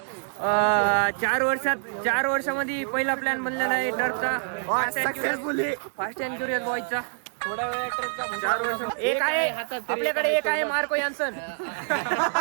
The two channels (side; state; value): left; silent; digital silence